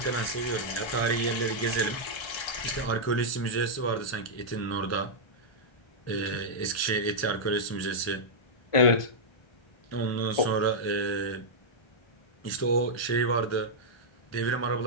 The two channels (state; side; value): late; right; 1.3 ms